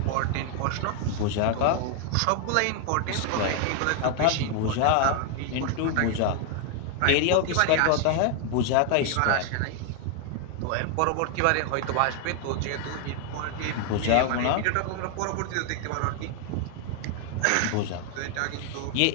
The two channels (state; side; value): different; both; correlation 0.00